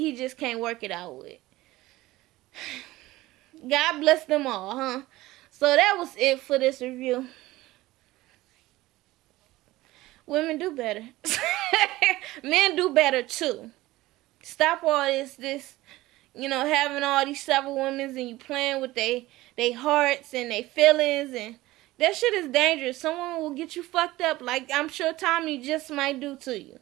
just can't work it out with. God bless them all, huh? So that was it for this review. Women do better. Men do better too. Stop all this, you know, having all these several women and you playing with they hearts and they feelings, and that shit is dangerous. Someone will get you fucked up like I'm sure Tommy just might do to you.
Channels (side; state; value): left; quieter; 17.9 dB